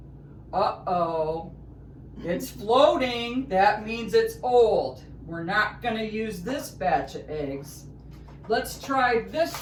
Uh-oh, it's floating. That means it's old. We're not going to use this batch of eggs. Let's try this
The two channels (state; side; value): identical; both; correlation 1.00